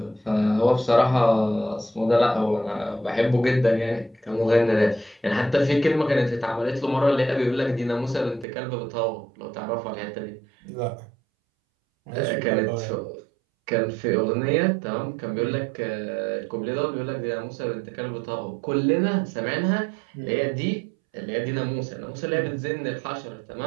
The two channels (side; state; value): left; drops out; at 8.5 s